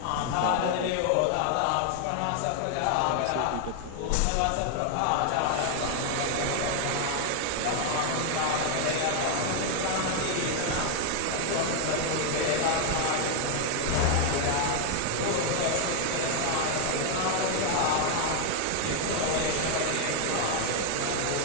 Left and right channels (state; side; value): different; both; correlation 0.00